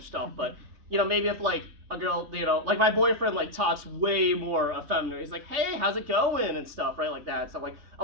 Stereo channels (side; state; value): left; late; 3.4 ms